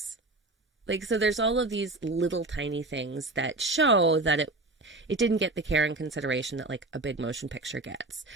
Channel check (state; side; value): quieter; left; 3.0 dB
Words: Like, so there's all of these little tiny things that show that it didn't get the care and consideration that, like, a big motion picture gets.